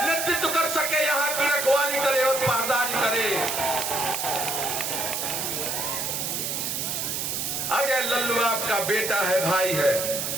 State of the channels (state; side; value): noise; right; hiss, 2 dB below the sound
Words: नेतृत्व कर सके, यहाँ की रखवाली करे और पारदारी करे। अजय लल्लू आपका बेटा है, भाई है।